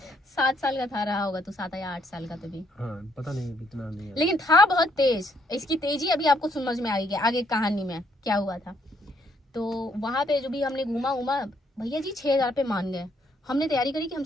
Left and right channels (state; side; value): normal; both; correlation 0.70